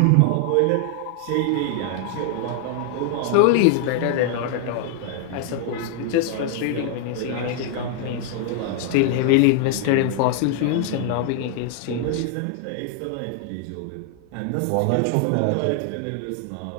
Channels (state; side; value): different; both; correlation 0.00